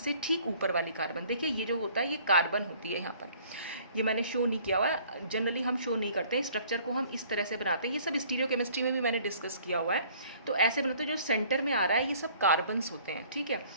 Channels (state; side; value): inverted; both; correlation -0.56